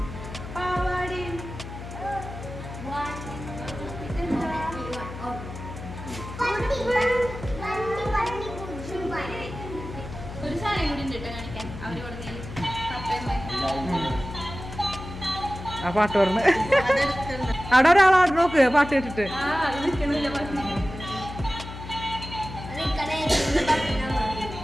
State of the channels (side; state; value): left; noise; hum, 10 dB below the sound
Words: പാവാടയും ഇതെന്താ ഒരു സാധനം കൂടി ഉണ്ട് കേട്ടോ കാണിക്കാൻ അവര് പറഞ്ഞ ആ പാട്ട് പറഞ്ഞ് അവിടെ ഒരാളാട് നോക്ക് പാട്ട് കേട്ടിട്ട്. ആ അത് നിൽക്കണില്ല പറഞ്ഞു